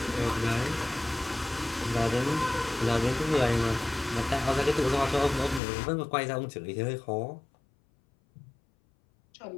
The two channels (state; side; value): drops out; right; at 5.6 s